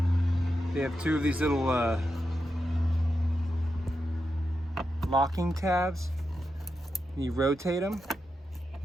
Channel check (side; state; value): both; normal; correlation 0.87